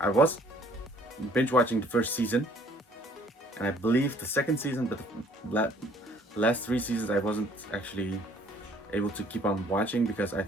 was binge watching the first season, and I believe the second season, but the last 3 seasons I wasn't actually able to keep on watching because I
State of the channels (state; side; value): normal; both; correlation 0.59